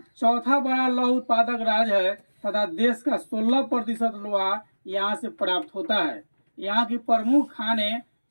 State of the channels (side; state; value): both; inverted; correlation -1.00